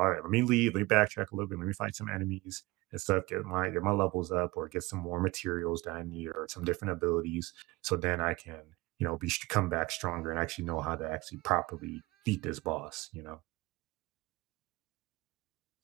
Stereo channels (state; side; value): quieter; left; 21.8 dB